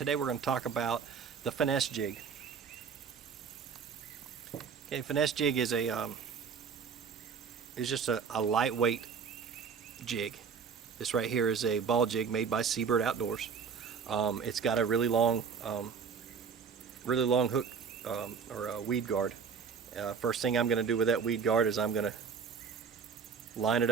we're going to talk about the Finesse Jig. Okay, Finesse Jig is just a lightweight jig. This right here is a ball jig made by Seabird Outdoors. It's got a really long hook or a weed guard. First thing I'm going to do with that weed guard is I'm going to line it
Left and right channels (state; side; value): quieter; left; 6.2 dB